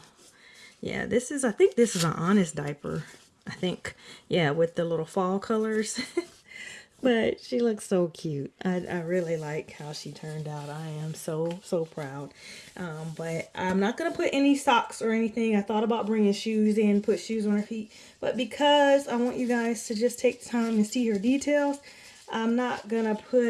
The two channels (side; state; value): both; identical; correlation 1.00